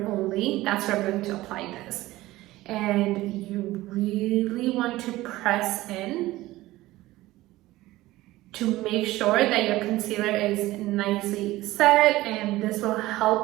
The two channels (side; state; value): left; quieter; 17.5 dB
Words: only, that's where I'm going to apply this. And you really want to press in to make sure that your concealer is nicely set, and this will